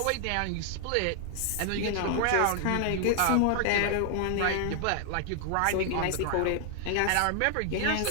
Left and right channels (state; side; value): different; both; correlation 0.00